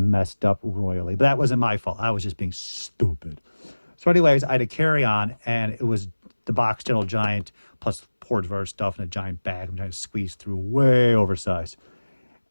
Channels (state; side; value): inverted; both; correlation -1.00